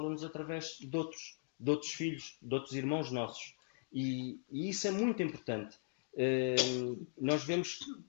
através de outros filhos, de outros irmãos nossos, e isso é muito importante. Nós vemos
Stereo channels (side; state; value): right; silent; digital silence